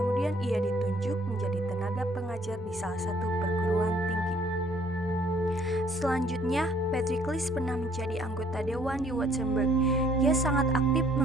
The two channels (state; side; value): normal; both; correlation 0.61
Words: ia ditunjuk menjadi tenaga pengajar di salah satu perguruan tinggi. Selanjutnya, Pericles pernah menjadi anggota dewan di Württemberg. Ia sangat aktif